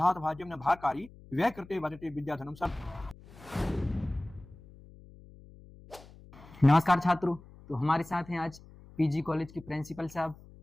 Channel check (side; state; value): left; noise; hum, 21 dB below the sound